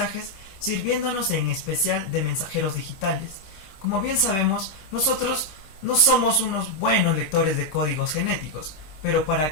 sirviéndonos en especial de mensajeros digitales. Como bien sabemos, nosotros no somos unos buenos lectores de códigos genéticos, pero para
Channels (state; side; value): late; right; 26 ms